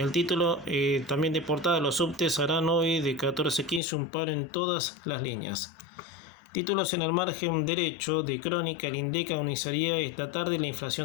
título también de portada: los subtes harán hoy de 14 a 15 un paro en todas las líneas. Títulos en el margen derecho de Crónica: el INDEC anunciaría esta tarde la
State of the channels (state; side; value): drops out; right; at 3.8 s